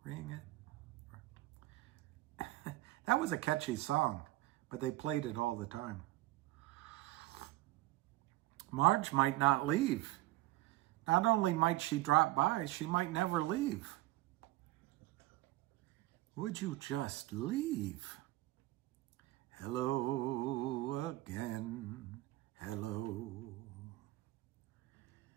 Ring it. That was a catchy song, but they played it all the time. Marge might not leave. Not only might she drop by, she might never leave. Would you just leave? Hello again, hello.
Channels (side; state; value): left; quieter; 17.7 dB